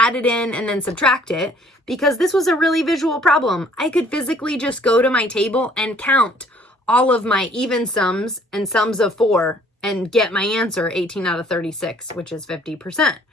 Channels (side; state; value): both; normal; correlation 0.58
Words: it in and then subtract it because this was a really visual problem. I could physically just go to my table and count all of my even sums and sums of 4 and get my answer 18 out of 36, which is 50%.